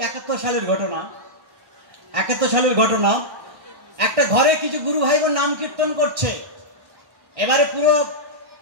71 সালের ঘটনা। 71 সালের ঘটনা, একটা ঘরে কিছু গুরু ভাই বোন নাম কীর্তন করছে। এবারে পুরো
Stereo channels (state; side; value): late; left; 1.5 ms